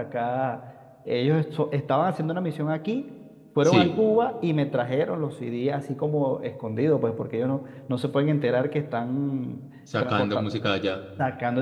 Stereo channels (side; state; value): both; identical; correlation 1.00